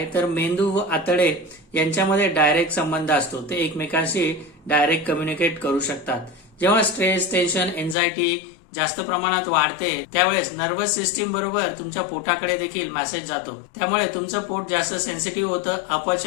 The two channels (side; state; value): right; drops out; at 8.0 s